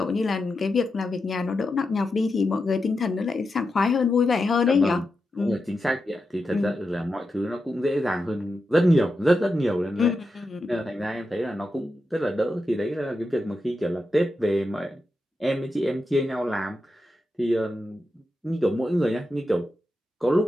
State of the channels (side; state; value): both; normal; correlation 0.88